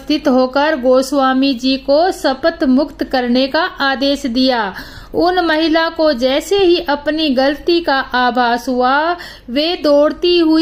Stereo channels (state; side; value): identical; both; correlation 1.00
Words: होकर गोस्वामी जी को शपथ मुक्त करने का आदेश दिया। उन महिला को जैसे ही अपनी गलती का आभास हुआ, वे दौड़ती